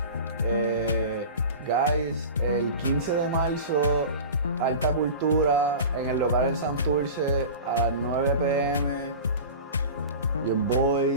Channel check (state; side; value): inverted; both; correlation -0.34